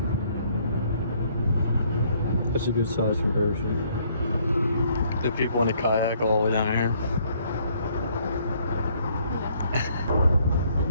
That's a good size comparison. The people in the kayak all the way down here.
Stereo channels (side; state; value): both; inverted; correlation -0.65